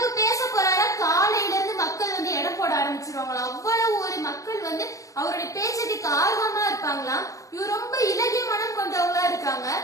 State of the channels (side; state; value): right; late; 0.16 ms